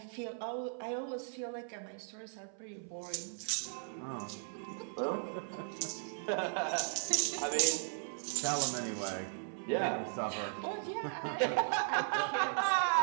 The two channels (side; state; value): left; silent; 53 dB below the other